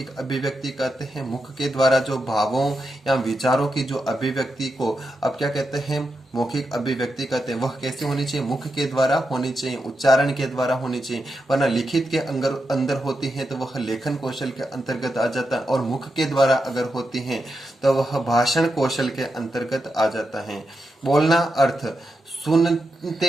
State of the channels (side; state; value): both; normal; correlation 0.86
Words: अभिव्यक्ति कहते हैं। मुख के द्वारा जो भावों या विचारों की जो अभिव्यक्ति को अब क्या कहते हैं, मौखिक अभिव्यक्ति कहते हैं। वह कैसे होनी चाहिए, मुख के द्वारा होनी चाहिए, उच्चारण के द्वारा होनी चाहिए, वरना लिखित के अंदर होती है तो वह लेखन कौशल के अंतर्गत आ जाता है, और मुख के द्वारा अगर होती है तो वह भाषण कौशल के अंतर्गत आ जाता है। बोलना अर्थ,